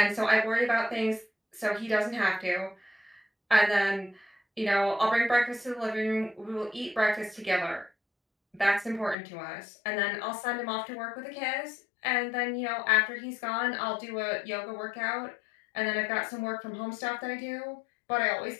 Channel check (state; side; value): drops out; right; at 9.2 s